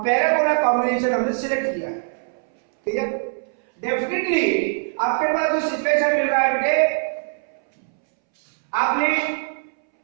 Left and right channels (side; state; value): left; silent; 64 dB below the other